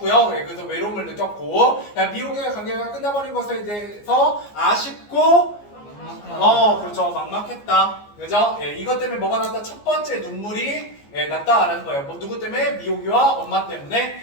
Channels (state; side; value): late; right; 14 ms